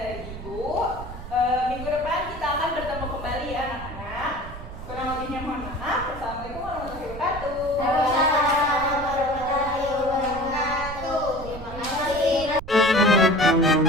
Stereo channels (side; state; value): right; noise; rumble, 11 dB below the sound